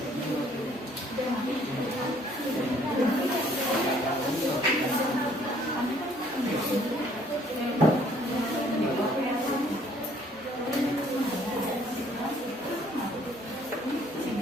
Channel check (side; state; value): both; normal; correlation 0.61